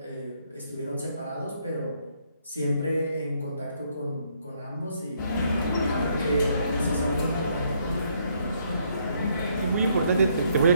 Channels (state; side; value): inverted; both; correlation -0.70